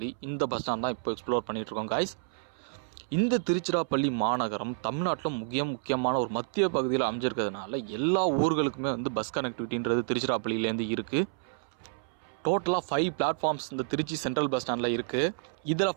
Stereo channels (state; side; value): silent; left; 58 dB below the other